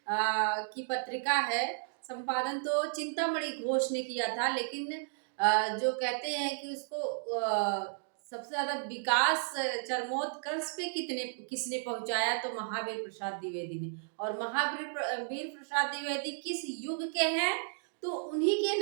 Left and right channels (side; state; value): left; silent; digital silence